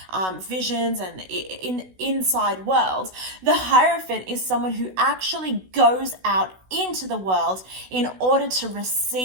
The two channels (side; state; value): left; late; 16 ms